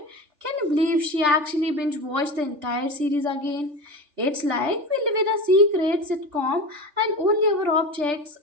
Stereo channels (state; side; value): late; left; 3.4 ms